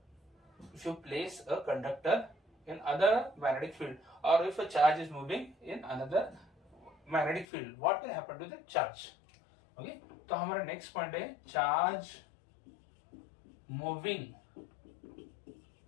if you place a conductor in other magnetic field और if a charge is moving in another magnetic field, what will happen to the charge? Okay, तो हमारा नेक्स्ट पॉइंट है charge moving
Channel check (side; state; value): right; drops out; at 7.5 s